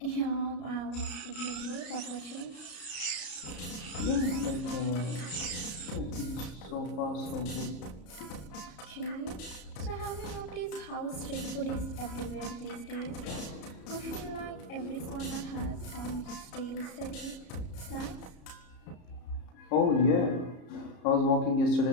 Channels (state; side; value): late; right; 33 ms